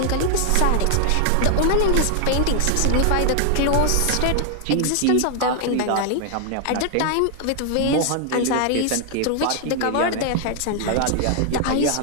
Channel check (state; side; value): different; both; correlation 0.00